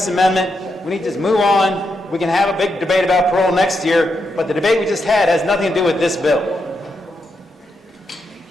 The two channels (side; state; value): both; normal; correlation 0.83